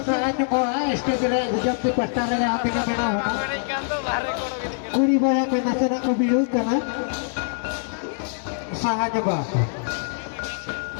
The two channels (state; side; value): silent; right; 63 dB below the other